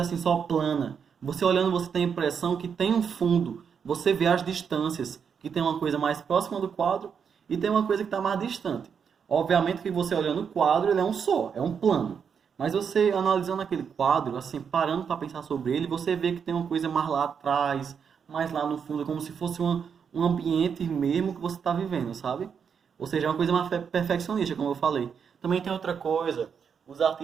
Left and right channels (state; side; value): quieter; left; 6.9 dB